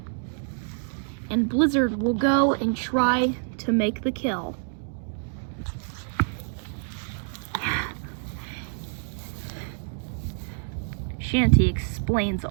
And Blizzard will go and try to make the kill. Shanty explains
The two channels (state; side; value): silent; left; digital silence